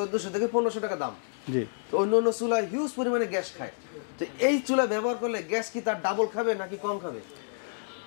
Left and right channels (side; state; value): right; silent; digital silence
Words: থেকে 1500 টাকা দাম। জি। তো অন্য চুলা হিউজ পরিমাণে গ্যাস খায়, তো এই চুলা ব্যবহার করলে গ্যাস কি তার ডাবল খাবে নাকি কম খাবে?